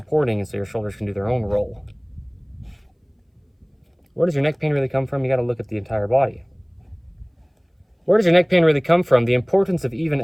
and so your shoulders can do their own roll. Where does your neck pain really come from? You got to look at the entire body. Where does your neck pain really come from? The importance of even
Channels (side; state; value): both; identical; correlation 1.00